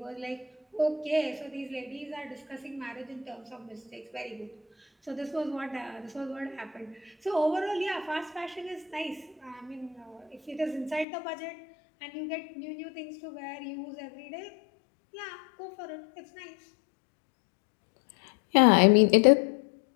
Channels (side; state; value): right; drops out; at 11.1 s